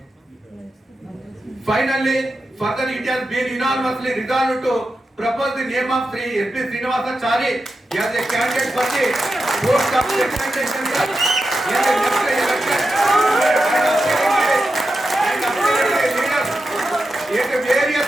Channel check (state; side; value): normal; both; correlation 0.89